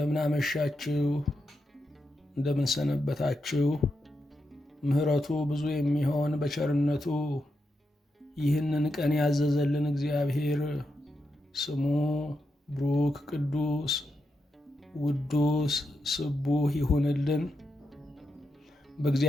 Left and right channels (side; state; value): both; normal; correlation 0.86